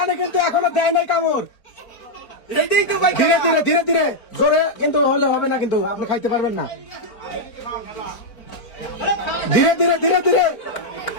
কিন্তু এখনো দেয় নাই কামড়। এইটাই তো ভাই, ধীরে ধীরে ধীরে ধীরে, জোরে কিন্তু হলে হবে না, কিন্তু আপনি খাইতে পারবেন না। ধীরে ধীরে ধীরে ধীরে,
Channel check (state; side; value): late; right; 4.4 ms